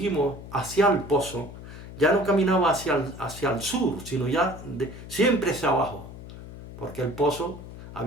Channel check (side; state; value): left; noise; hum, 14 dB below the sound